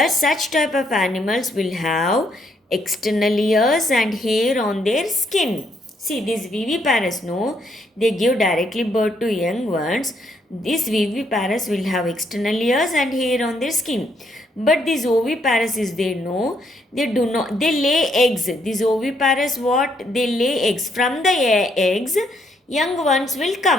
such type of animals will have external ears and hair on their skin. See, these viviparous, no, they give directly birth to young ones. These viviparous will have external ears and hair on their skin. But these oviparous is there, no, they do not, they lay eggs. These oviparous, what? They lay eggs. From the eggs, young ones will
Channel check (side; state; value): both; normal; correlation 0.72